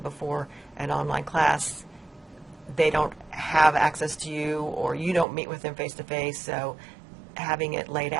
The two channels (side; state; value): left; drops out; at 5.2 s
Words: before, an online class, they don't have access to you, or you don't meet with them face-to-face, so having it laid